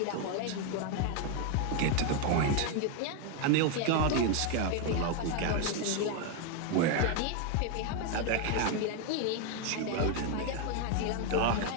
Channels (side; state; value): both; different; correlation 0.01